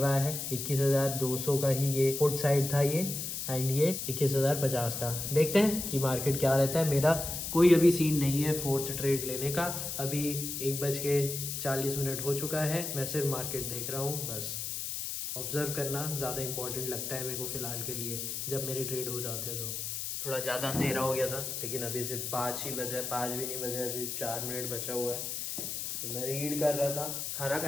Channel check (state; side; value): noise; left; hiss, 4 dB below the sound